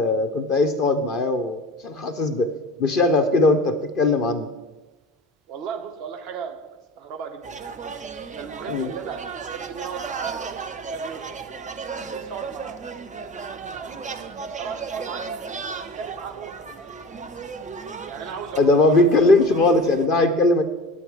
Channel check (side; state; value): both; normal; correlation 0.36